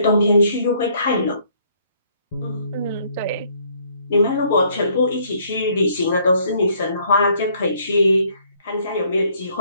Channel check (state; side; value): inverted; both; correlation -0.65